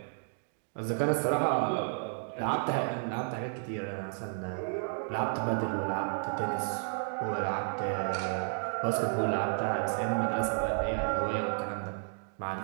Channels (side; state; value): left; silent; digital silence